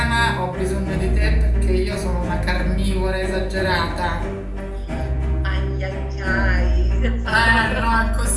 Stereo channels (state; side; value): identical; both; correlation 1.00